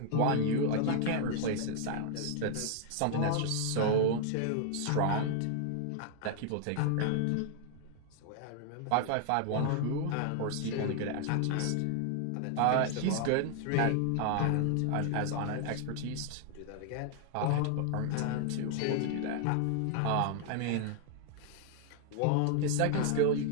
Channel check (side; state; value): both; different; correlation 0.00